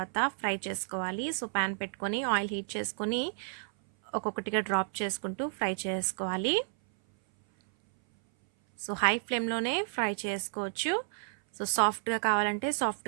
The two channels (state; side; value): silent; left; 57 dB below the other